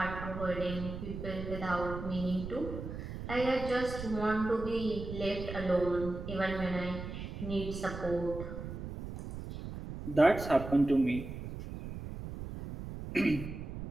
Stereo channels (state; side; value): noise; right; rumble, 8 dB below the sound